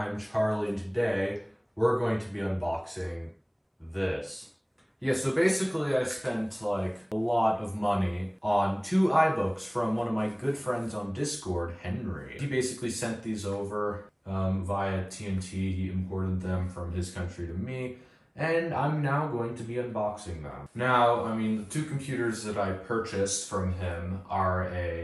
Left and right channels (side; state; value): both; identical; correlation 1.00